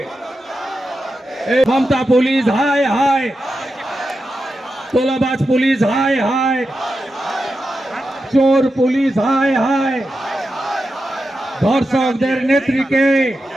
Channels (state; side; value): normal; both; correlation 0.89